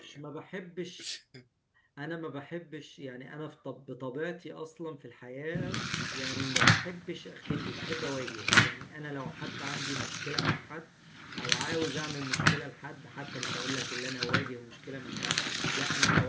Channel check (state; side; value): identical; both; correlation 1.00